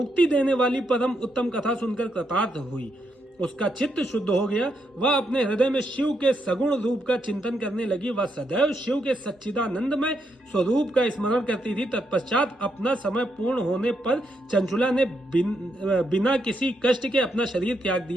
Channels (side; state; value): both; normal; correlation 0.80